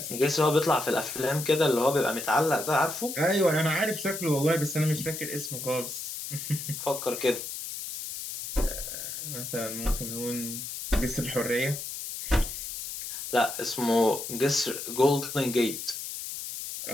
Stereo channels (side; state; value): left; noise; hiss, 7 dB below the sound